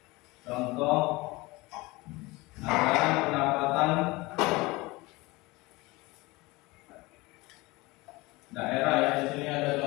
Contoh anggaran pendapatan daerah ya. Di sini ada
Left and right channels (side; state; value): right; quieter; 22.4 dB